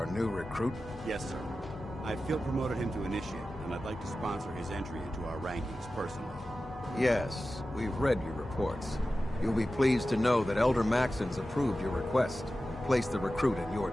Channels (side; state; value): both; normal; correlation 0.94